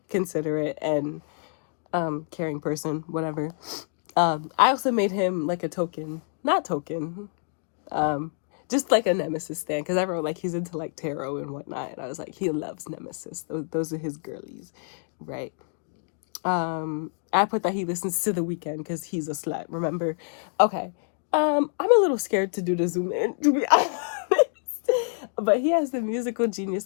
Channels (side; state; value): right; silent; digital silence